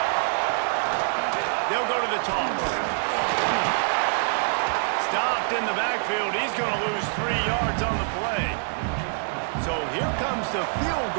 They'll go to the toss. Stopped in the backfield. He's going to lose 3 yards on the play. So here comes the field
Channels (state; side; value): silent; left; 61 dB below the other